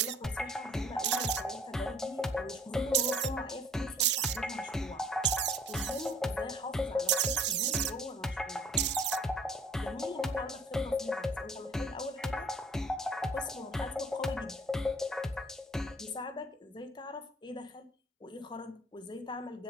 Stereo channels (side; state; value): both; normal; correlation 0.54